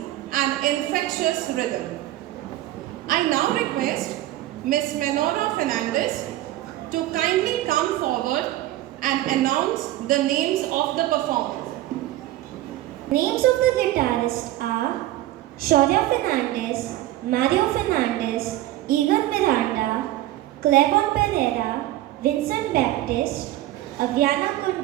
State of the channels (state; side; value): quieter; left; 15.3 dB